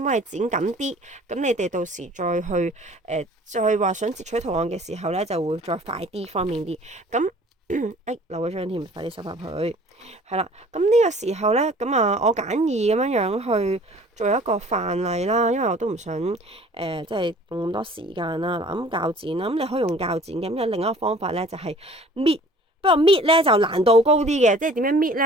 幫你剪緊啲，咁你哋到時再去再話想截取圖案嘅時候咧，就會再快啲方便啲，咁。漏咗張添，快啲收翻佢。係啦，咁呢個時候咧，咁啊，我簡易咁樣樣去做一個範例啦，因為我都唔想即係用咁多時間啦。嗱，咁鉸剪啦，咁你可以用鉸剪嘅。咁有另一個方法咧，就係搣。不過搣咧就難度高啲嘅，即係點樣搣咧？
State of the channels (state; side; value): normal; both; correlation 0.50